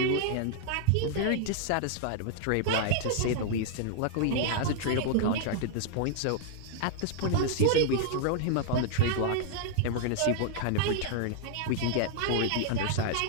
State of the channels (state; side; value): different; both; correlation 0.00